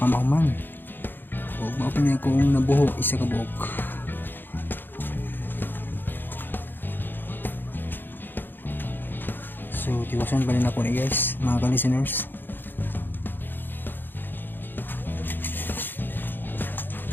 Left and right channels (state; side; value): late; right; 0.095 ms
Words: O mao pa niya akong nabuho isa ka buok. So tiwasan pa rin ako ni guys, mga ka-listeners.